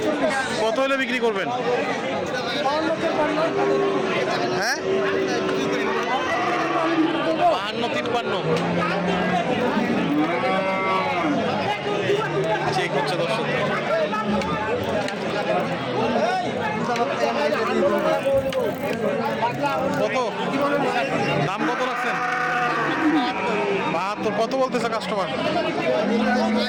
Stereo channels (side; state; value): both; identical; correlation 1.00